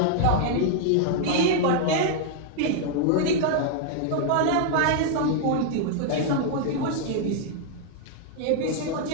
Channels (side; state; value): both; different; correlation -0.01